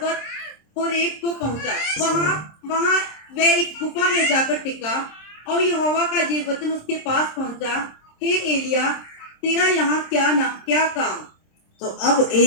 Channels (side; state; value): right; late; 26 ms